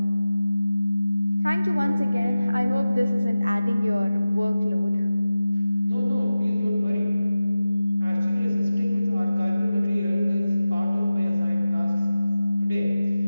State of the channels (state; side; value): inverted; both; correlation -0.95